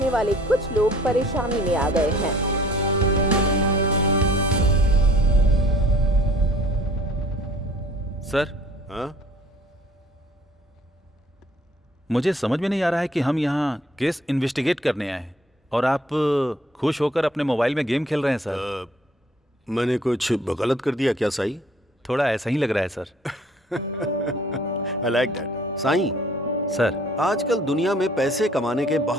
वाले कुछ लोग परेशानी में आ गए हैं। सर, मुझे समझ में नहीं आ रहा है कि हम यहाँ केस इन्वेस्टिगेट करने आए हैं और आप खुश होकर अपने मोबाइल में गेम खेल रहे हैं सर। मैंने कुछ गलत कर दिया क्या साईं? थोड़ा ऐसा ही लग रहा है sir. I like that. Sai, sir, आजकल दुनिया में पैसे कमाने के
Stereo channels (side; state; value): both; normal; correlation 0.54